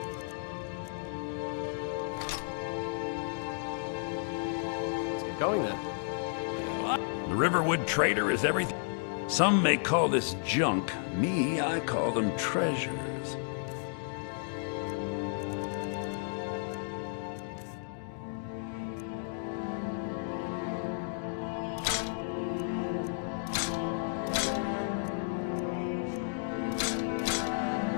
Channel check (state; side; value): silent; right; digital silence